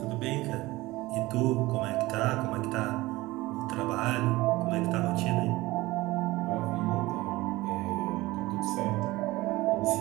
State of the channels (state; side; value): quieter; left; 19.5 dB